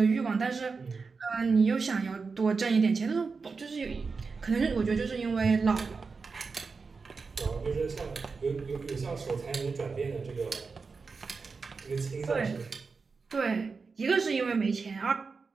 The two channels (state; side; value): quieter; left; 4.7 dB